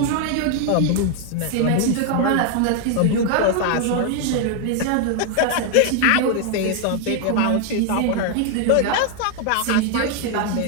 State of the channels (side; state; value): both; different; correlation 0.00